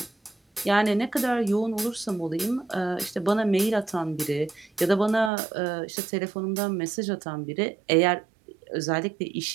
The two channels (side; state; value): left; drops out; at 5.3 s